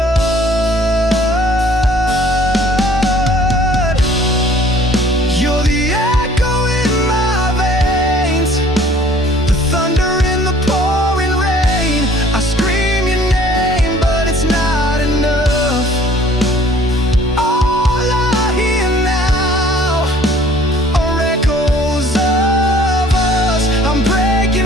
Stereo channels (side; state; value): both; normal; correlation 0.55